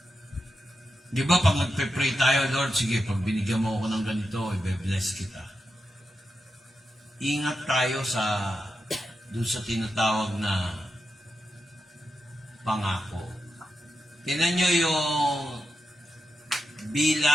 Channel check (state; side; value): normal; both; correlation 0.88